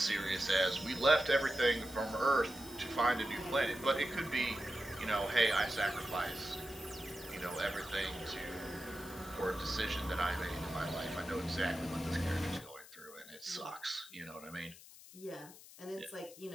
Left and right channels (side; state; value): left; noise; hiss, 18 dB below the sound